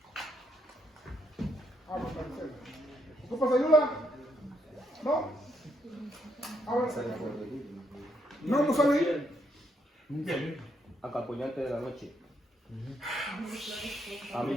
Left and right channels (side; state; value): both; normal; correlation 0.75